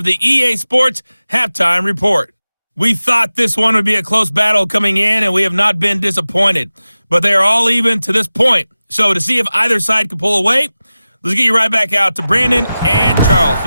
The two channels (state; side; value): inverted; both; correlation -0.95